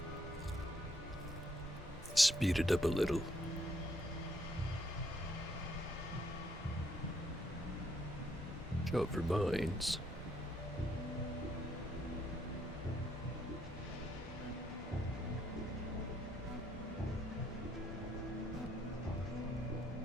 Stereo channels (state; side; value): normal; both; correlation 0.71